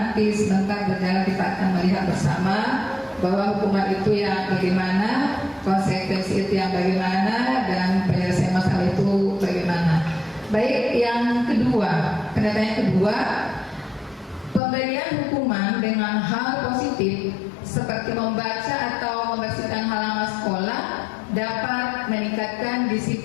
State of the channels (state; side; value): drops out; right; at 14.6 s